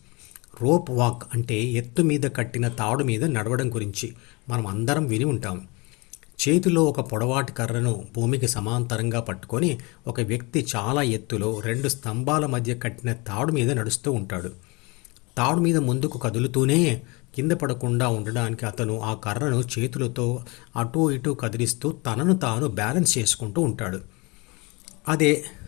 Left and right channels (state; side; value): quieter; right; 27.0 dB